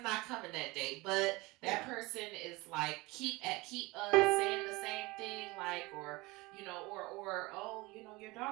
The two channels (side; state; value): left; quieter; 22.9 dB